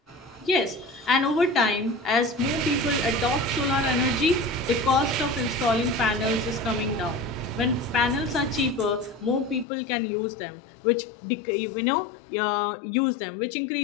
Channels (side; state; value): right; drops out; at 9.7 s